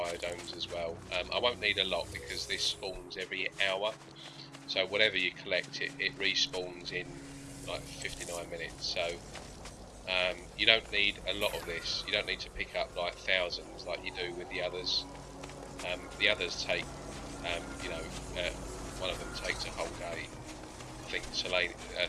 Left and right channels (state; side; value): identical; both; correlation 1.00